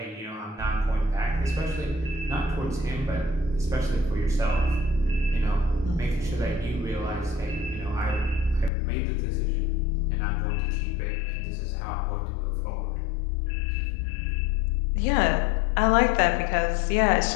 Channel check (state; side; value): drops out; right; at 8.7 s